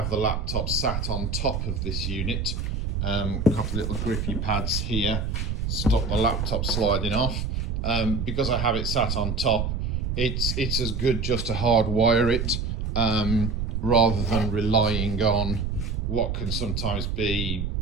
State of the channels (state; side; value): noise; right; rumble, 2 dB below the sound